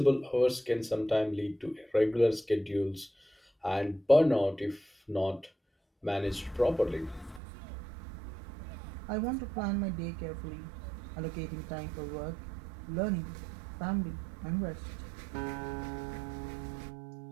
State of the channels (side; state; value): left; drops out; at 7.4 s